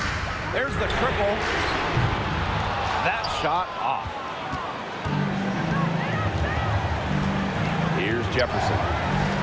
There's the triple. That shot off. Here's Jefferson.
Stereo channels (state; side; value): identical; both; correlation 1.00